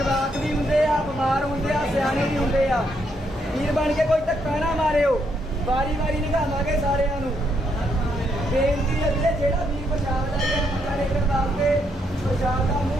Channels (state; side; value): normal; both; correlation 0.76